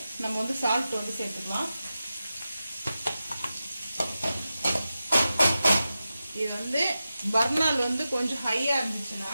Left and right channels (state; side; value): inverted; both; correlation -0.92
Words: நம்ம வந்து சால்ட் வந்து சேர்த்துக்கலாம். இது வந்து பர்னால் வந்து கொஞ்சம் ஹையாக இருந்துச்சுன்னா